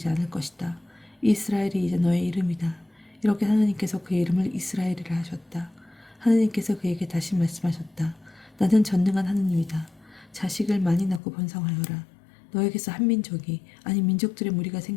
않을 것이다. 이스라엘이 이제 너의 이름이다. 이렇게 하느님께서 그의 이름을 이스라엘이라 하셨다. 하느님께서 그에게 다시 말씀하셨다. 나는 전능한 하느님이다. 자식을 많이 낳고 번성하여라. 너에게서 한 민족이, 아니 민족들의 무리가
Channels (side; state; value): right; drops out; at 11.2 s